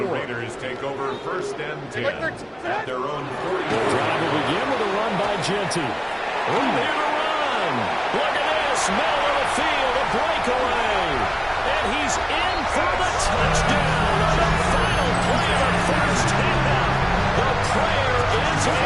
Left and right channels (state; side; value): identical; both; correlation 1.00